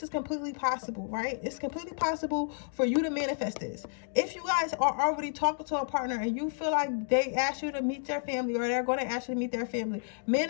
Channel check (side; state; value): right; silent; digital silence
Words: is completely possible, right? It's completely possible for you to manifest this. If you guys are already talking to a partner and you feel like they ask you to meet their family, or they're going to ask you to meet their family,